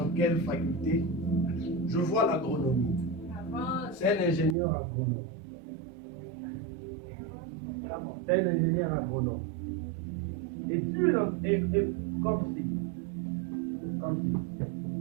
quelle faculté? Je vois l'agronomie. C'est un ingénieur agronome. C'est un ingénieur agronome. Et Dieu est comme si.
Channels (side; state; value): left; drops out; at 4.5 s